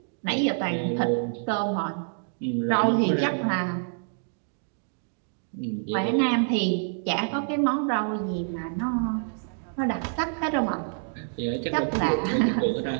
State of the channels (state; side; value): silent; left; digital silence